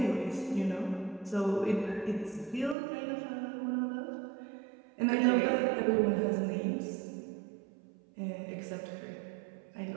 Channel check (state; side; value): drops out; left; at 2.8 s